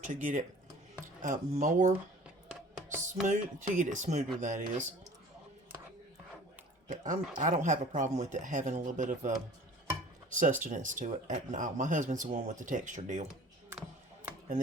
to get it more smooth, to get it smoother, that is. But I don't have a problem with it having a little bit of sustenance to it. No, my husband's the one with the texture deal. And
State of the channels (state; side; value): normal; both; correlation 0.46